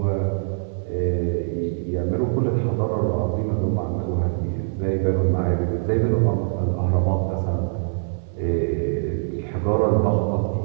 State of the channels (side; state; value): left; silent; 63 dB below the other